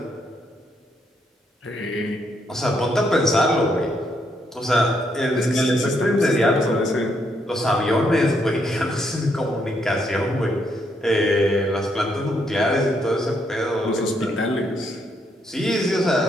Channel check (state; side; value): normal; both; correlation 0.75